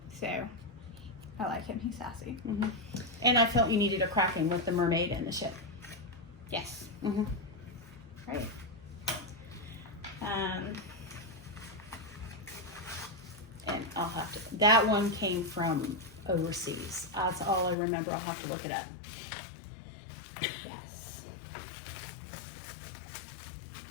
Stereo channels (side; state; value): right; drops out; at 17.8 s